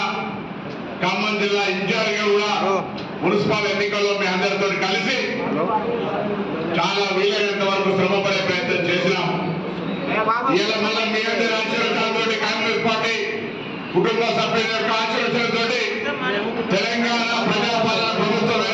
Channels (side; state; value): both; identical; correlation 1.00